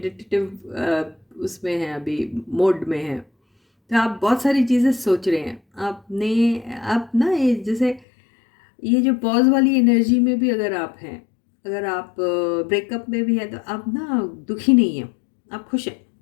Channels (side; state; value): right; drops out; at 8.0 s